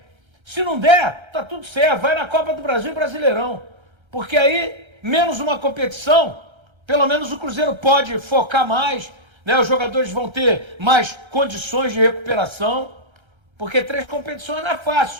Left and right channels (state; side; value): late; left; 1.3 ms